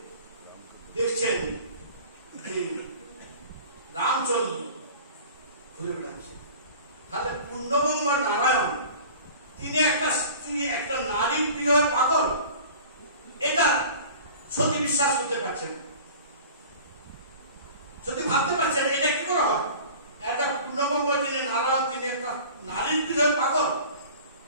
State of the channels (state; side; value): inverted; both; correlation -0.42